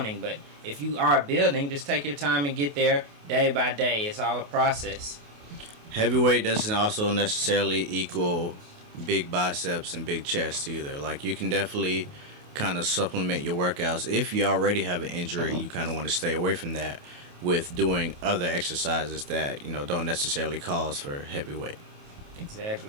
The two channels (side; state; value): left; late; 28 ms